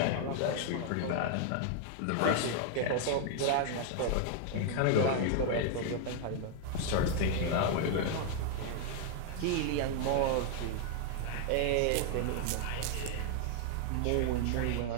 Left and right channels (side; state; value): both; different; correlation 0.00